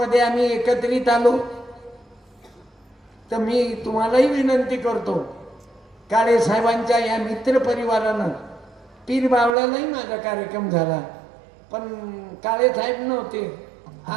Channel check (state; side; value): drops out; left; at 9.6 s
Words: आम्ही एकत्रित आलो. तर मी तुम्हालाही विनंती करतो, काळे साहेबांच्या या मित्र परिवारानं पीर बावळ्यालाही माझा कार्यक्रम झाला, पण काळे साहेब नव्हते.